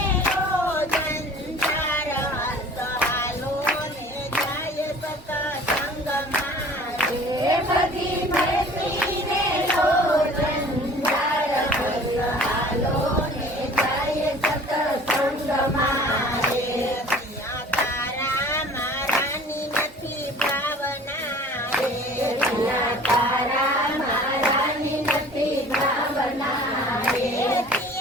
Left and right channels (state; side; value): normal; both; correlation 0.47